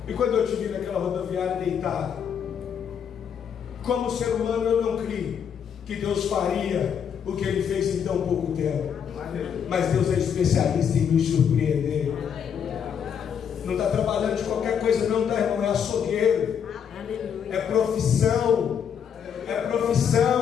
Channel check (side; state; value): right; quieter; 7.8 dB